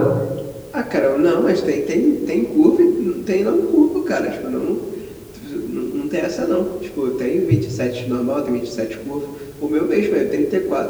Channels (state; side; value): identical; both; correlation 1.00